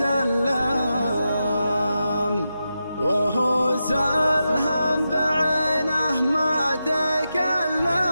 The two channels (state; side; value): inverted; both; correlation -0.89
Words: وهو سلهم بعينه ما تكلم.